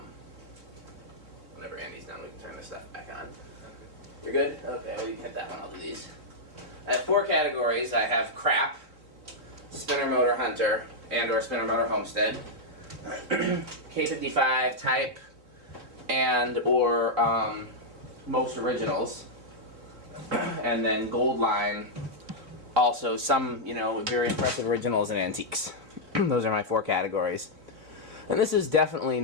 Whenever Andy's done, we can turn this stuff back on. You're good? Okay, well, you can hit that one. I'll do these. I have 4 categories. I have crap, spinner motor hunter, and or spinner motor homestead, K55 type, and or most originals, and then gold line. Also, some, you know, very impressive originals and antiques. Those are my 4 categories. And this is definitely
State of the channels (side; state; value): left; late; 4.1 ms